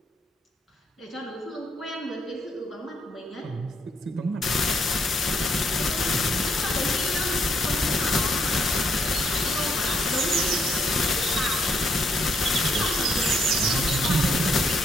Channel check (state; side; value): normal; both; correlation 0.73